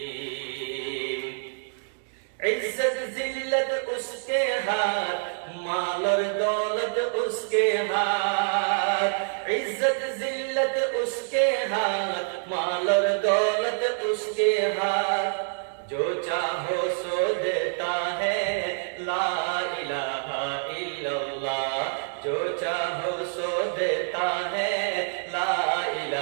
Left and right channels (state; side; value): silent; left; digital silence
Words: عزت ذلت اس کے ہاتھ، مال اور دولت اس کے ہاتھ، عزت ذلت اس کے ہاتھ، مال اور دولت اس کے ہاتھ، جو چاہو سو دیتا ہے، لا الہ الا اللہ، جو چاہو سو دیتا ہے، لا